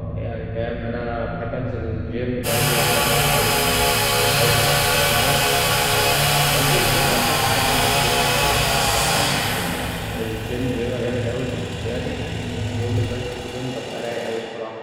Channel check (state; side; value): identical; both; correlation 1.00